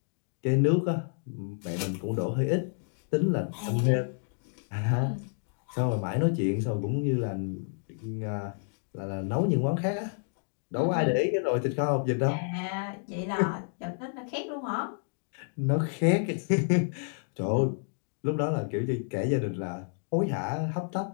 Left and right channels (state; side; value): silent; right; 56 dB below the other